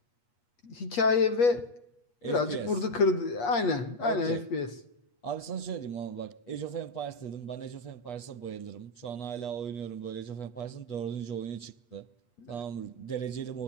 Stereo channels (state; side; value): late; right; 8.4 ms